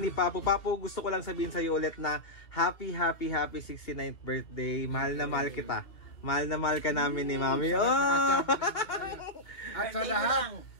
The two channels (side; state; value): right; late; 2.2 ms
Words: Papu. Papu, gusto ko lang sabihin sa iyo ulit na happy 69th birthday. Mahal na mahal kita. Mahal na mahal ka namin ni Mami. At